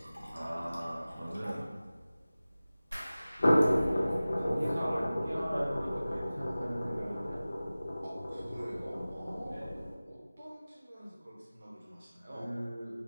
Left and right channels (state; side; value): inverted; both; correlation -0.97